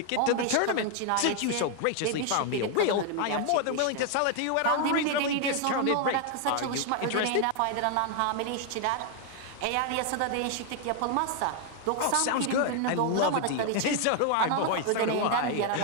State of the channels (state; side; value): different; both; correlation 0.00